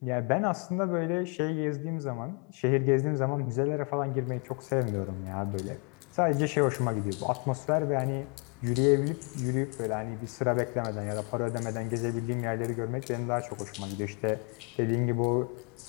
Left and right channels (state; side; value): quieter; right; 36.1 dB